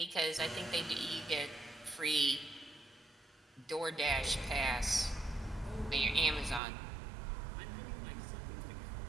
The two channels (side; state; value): left; drops out; at 6.6 s